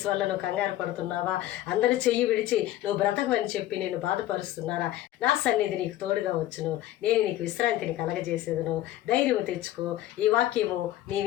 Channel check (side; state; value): right; quieter; 14.1 dB